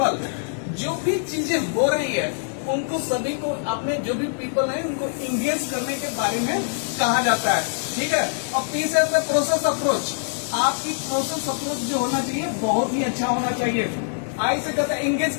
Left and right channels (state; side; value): silent; right; digital silence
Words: जो भी चीजें हो रही है उनको सभी को अपने जो भी पीपल है उनको इंगेज करने के बारे में कहा जाता है, ठीक है। और पी से होता है प्रोसेस अप्रोच, आपकी प्रोसेस अप्रोच जो होना चाहिए बहुत ही अच्छा होना चाहिए। आई से कहता है इंगेज